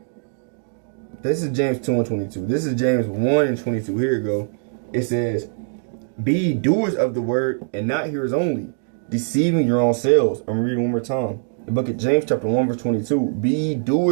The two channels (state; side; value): silent; left; digital silence